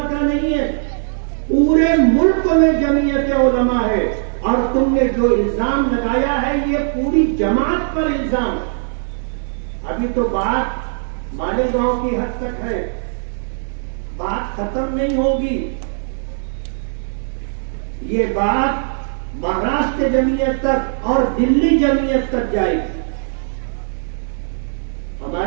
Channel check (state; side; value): silent; left; 67 dB below the other